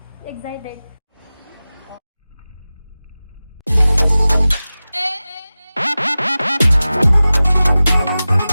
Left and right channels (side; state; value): both; inverted; correlation -0.96